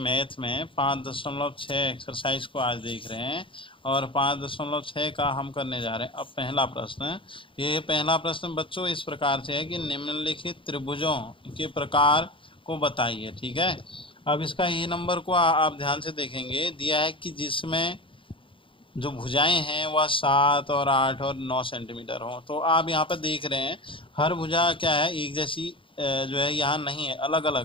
में 5.6 एक्सरसाइज को आज देख रहे हैं और 5.6 का हम करने जा रहे हैं। अब पहला प्रश्न, ये पहला प्रश्न बच्चों इस प्रकार से है कि निम्नलिखित त्रिभुजों के प्रकार को बताइए। ठीक है, अब इसका ए नंबर को आप ध्यान से देखेंगे, दिया है कि जिसमें जो भुजाएं हैं वह 7 और 8 और 9 सेंटीमीटर हो। तो आप यहाँ पर देख रहे हैं हर भुजा क्या है, एक जैसी जो है यहाँ नहीं है, अलग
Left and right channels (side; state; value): right; late; 0.25 ms